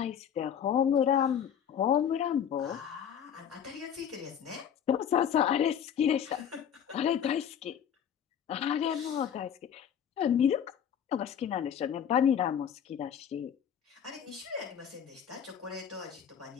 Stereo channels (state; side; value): quieter; right; 8.7 dB